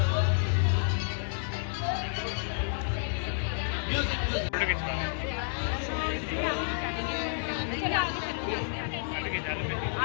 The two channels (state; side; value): silent; right; digital silence